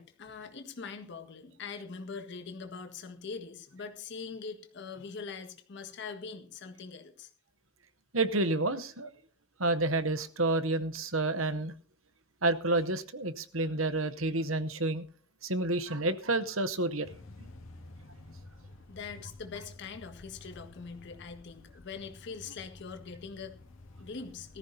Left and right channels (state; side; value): normal; both; correlation -0.02